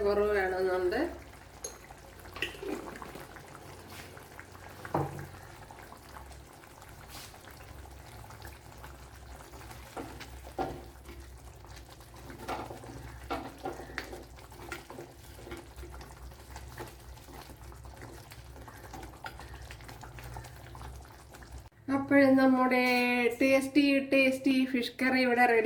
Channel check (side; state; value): both; identical; correlation 1.00